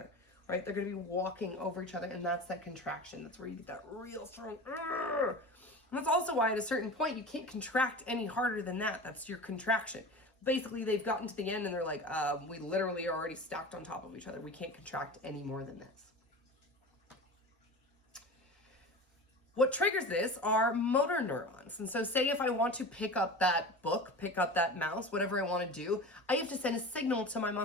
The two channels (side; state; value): both; normal; correlation 0.32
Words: Right, they're going to be walking over each other, and that's that contraction. That's where you get that real strong. And that's also why at a certain point you can't contract any harder than that. That's your contraction. Basically, they've gotten to the end and they're like, we literally are already stacked on top of each other. We can't contract any more than this. What triggers this are motor neurons. And so say if I want to pick up that book, pick up that mouse, whatever I want to do, I have to send a signal to my